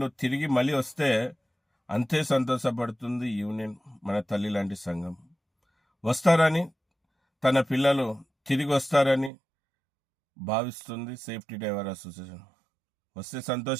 తిరిగి మళ్ళీ వస్తే అంతే సంతోషపడుతుంది యూనియన్, మన తల్లి లాంటి సంఘం. వస్తారని, తన పిల్లలు తిరిగి వస్తారని భావిస్తుంది సేఫ్టీ డ్రైవర్ అసోసియేషన్. వస్తే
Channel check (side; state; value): left; drops out; at 9.3 s